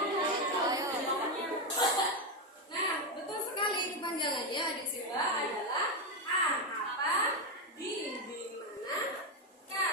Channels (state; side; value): normal; both; correlation 0.08